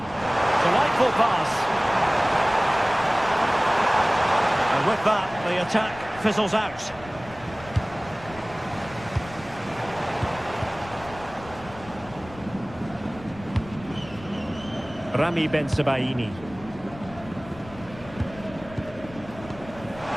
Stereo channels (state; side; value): noise; left; rumble, 18 dB below the sound